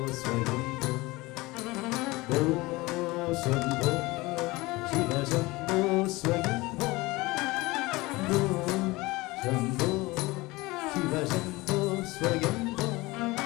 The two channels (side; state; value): right; quieter; 21.6 dB